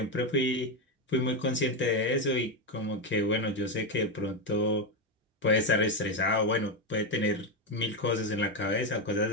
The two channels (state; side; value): normal; both; correlation 0.09